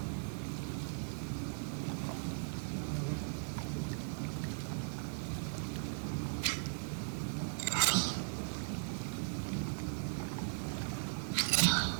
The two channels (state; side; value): silent; left; digital silence